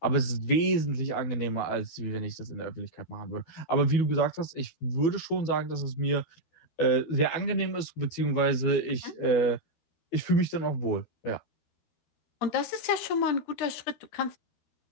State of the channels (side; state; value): right; late; 12 ms